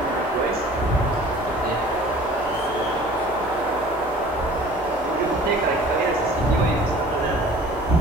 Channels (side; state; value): both; normal; correlation 0.48